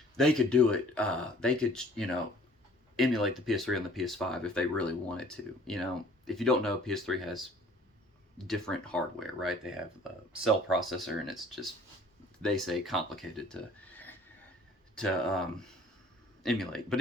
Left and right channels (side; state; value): both; normal; correlation 0.52